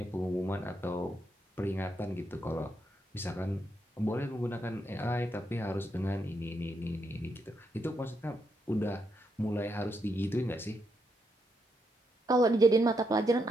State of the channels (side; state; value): both; normal; correlation 0.79